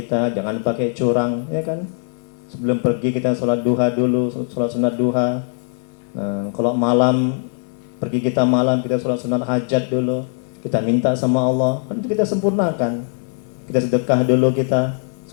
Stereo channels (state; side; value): silent; right; 63 dB below the other